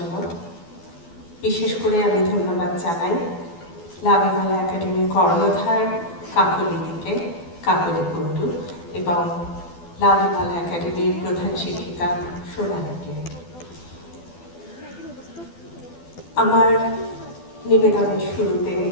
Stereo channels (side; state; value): right; late; 12 ms